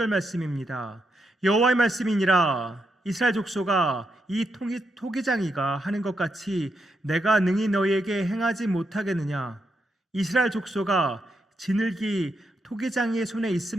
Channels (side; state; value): both; normal; correlation 0.82